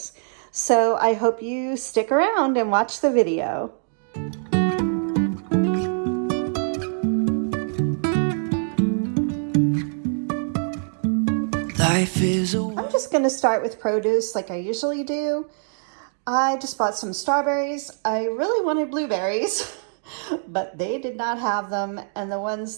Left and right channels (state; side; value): silent; left; digital silence